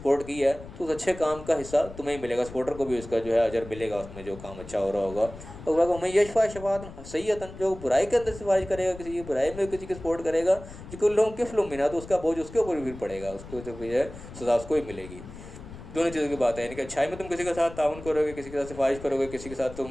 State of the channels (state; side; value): noise; left; rumble, 15 dB below the sound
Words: کی ہے تو اس اچھے کام کا حصہ تمہیں ہی ملے گا، سپورٹر کو بھی اس کا جو ہے اجر ملے گا اس میں جو کام اچھا ہو رہا ہوگا۔ اور میں یشفع شفاعۃ سیئۃ، جو برائی کے اندر سفارش کرے گا، کسی کی برائی میں کسی کی سپورٹ کرے گا، یکن لہ کفل منہا، تو اس کا بوجھ اس کے اوپر بھی پڑے گا، اس کو جو ہے سزا اس کو ہی ملے گی۔ دونوں چیزوں کی بات ہے، یعنی کہ اچھائی میں تم کسی کے ساتھ تعاون کرو گے، کسی کے ساتھ سفارش کرو گے، کسی کے ساتھ